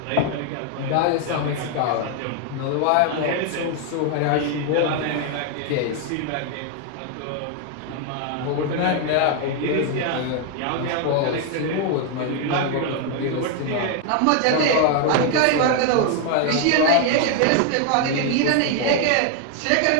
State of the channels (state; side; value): different; both; correlation 0.00